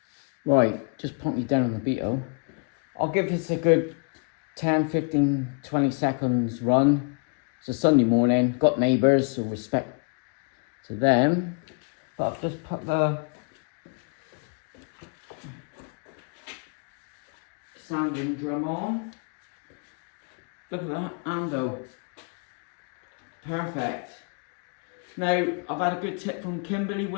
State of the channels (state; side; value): quieter; right; 37.0 dB